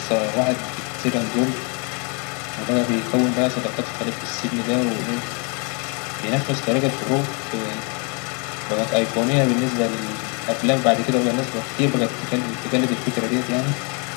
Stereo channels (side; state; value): right; quieter; 34.8 dB